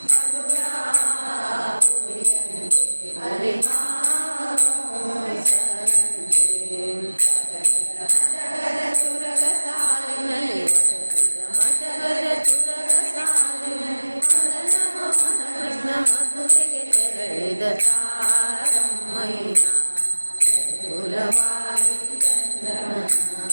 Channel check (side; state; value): both; inverted; correlation -1.00